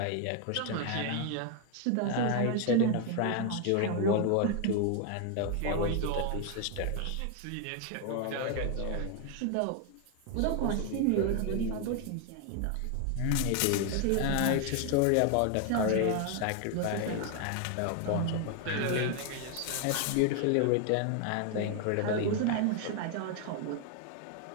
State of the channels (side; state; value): both; different; correlation 0.01